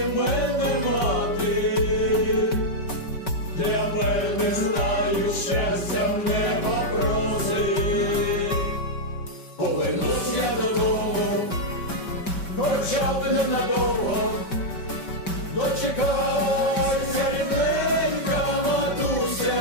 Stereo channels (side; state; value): right; late; 5.2 ms